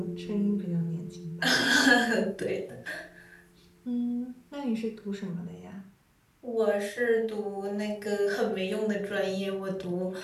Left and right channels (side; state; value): both; identical; correlation 1.00